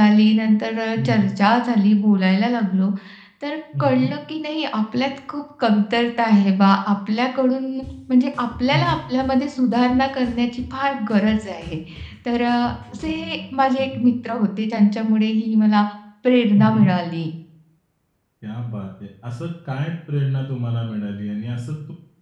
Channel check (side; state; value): both; identical; correlation 1.00